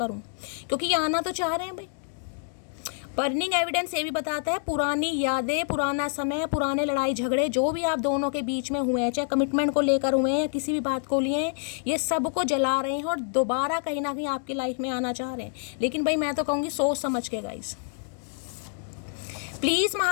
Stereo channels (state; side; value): silent; right; 60 dB below the other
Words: क्योंकि ये आना तो चाह रहे हैं भाई। बर्निंग एविडेंस ये भी बताता है पुरानी यादें, पुराना समय, पुराने लड़ाई झगड़े जो भी आप दोनों के बीच में हुए हैं, चाहे कमिटमेंट को लेकर हुए हैं या किसी भी बात को लिए हैं, ये सब को जला रहे हैं और दोबारा कहीं ना कहीं आपकी लाइफ में आना चाह रहे हैं। लेकिन भाई मैं तो कहूँगी सोच समझ के guys. Please